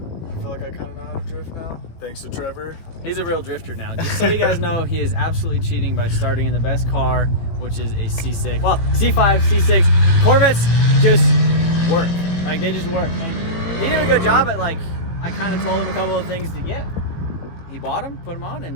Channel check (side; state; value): right; late; 18 ms